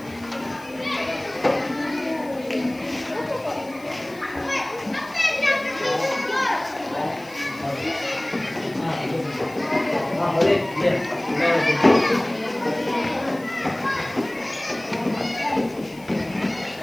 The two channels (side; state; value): left; noise; hiss, 24 dB below the sound